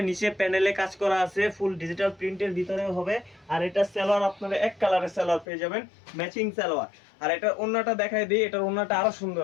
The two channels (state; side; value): drops out; right; at 5.5 s